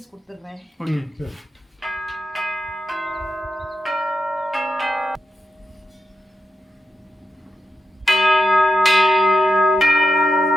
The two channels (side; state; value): both; normal; correlation 0.87